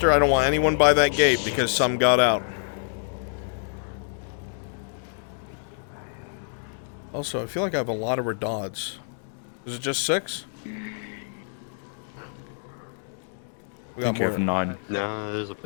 I don't want anyone by that gate because some got out. Also, I feel like I have a lot of redods. Is it just 6? We got more than 9. No,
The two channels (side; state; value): right; silent; digital silence